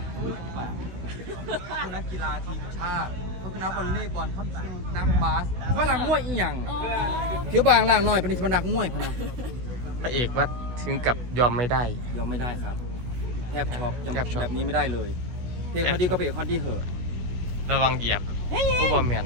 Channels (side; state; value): left; late; 16 ms